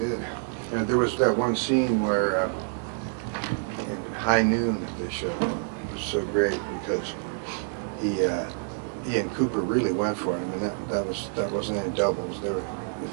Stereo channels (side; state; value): left; silent; digital silence